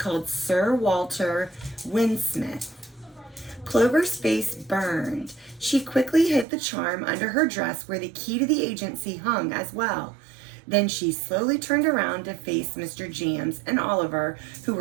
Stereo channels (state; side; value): drops out; left; at 6.5 s